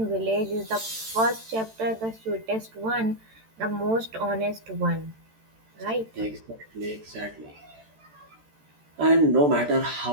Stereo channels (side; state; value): left; late; 13 ms